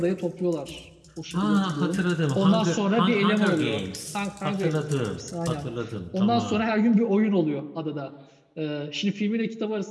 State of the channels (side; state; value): both; identical; correlation 1.00